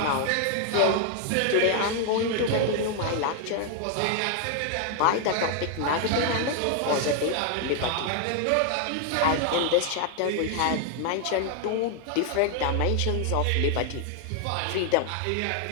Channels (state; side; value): different; both; correlation 0.00